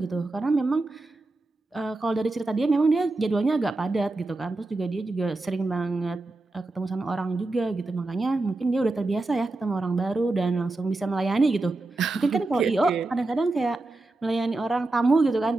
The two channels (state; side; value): quieter; left; 3.1 dB